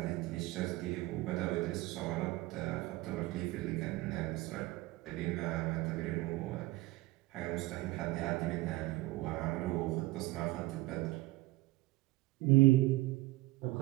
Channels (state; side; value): quieter; left; 19.9 dB